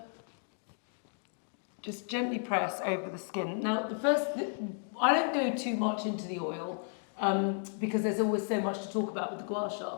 just gently press over the skin. Now, I don't go too much into the oil because there's always so much to talk about with the gua sha.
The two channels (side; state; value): right; silent; 55 dB below the other